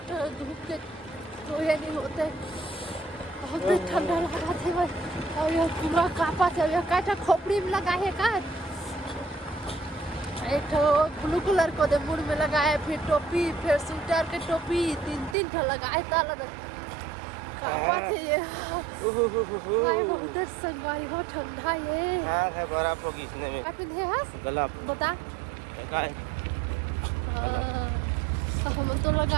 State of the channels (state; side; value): drops out; left; at 15.4 s